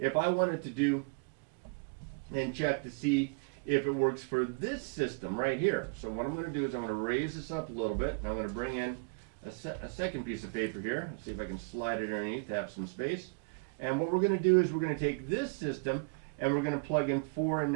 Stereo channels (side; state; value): left; quieter; 33.6 dB